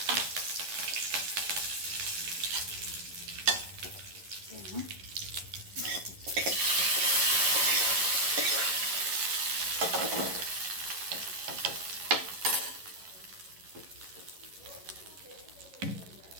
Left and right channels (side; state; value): left; late; 11 ms